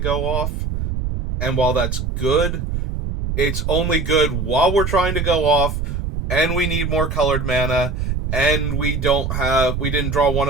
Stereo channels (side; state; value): right; noise; rumble, 3 dB below the sound